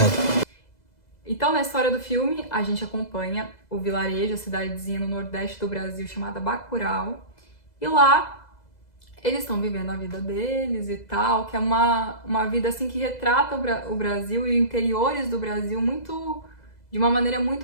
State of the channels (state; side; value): late; right; 2.0 ms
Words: Então na história do filme a gente acompanha o vilarejo, a cidadezinha no nordeste do Brasil chamada Bacurau. E lá eles estão vivendo a vida deles e tal, que é uma vida assim que retrata o Brasil e os interiores do Brasil de uma maneira